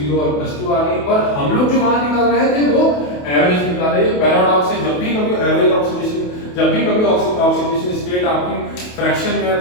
और +2 आ रही, पर हम लोग जो वहां निकाल रहे थे वो एवरेज निकाल रहे हैं। पैराडॉक्स है, जब भी कभी एवरेज ऑक्सीडेशन, जब भी कभी ऑक्सीडेशन स्टेट आपकी फ्रैक्शन में है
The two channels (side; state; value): right; late; 28 ms